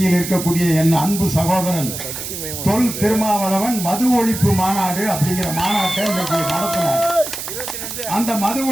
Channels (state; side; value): noise; right; hiss, 7 dB below the sound